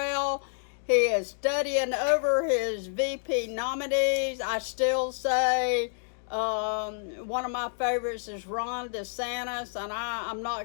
He is studying over his VP nominees. I still say one of my favorites is Ron DeSantis, and I'm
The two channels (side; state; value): right; silent; digital silence